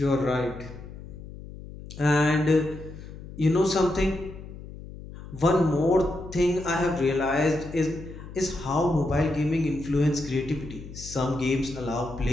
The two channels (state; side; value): noise; left; hum, 14 dB below the sound